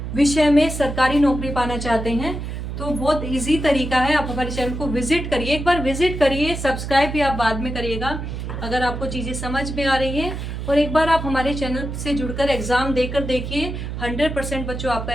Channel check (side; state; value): right; noise; hum, 6 dB below the sound